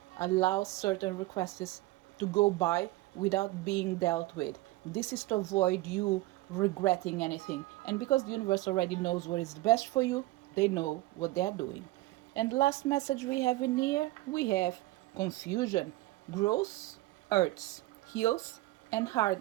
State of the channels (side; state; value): left; quieter; 18.9 dB